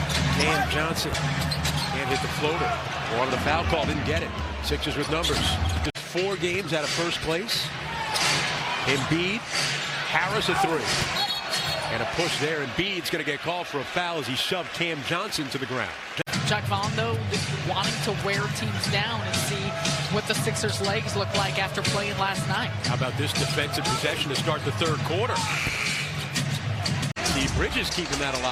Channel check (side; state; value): both; identical; correlation 1.00